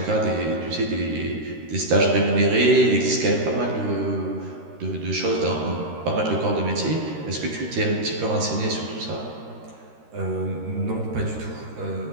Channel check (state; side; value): late; left; 13 ms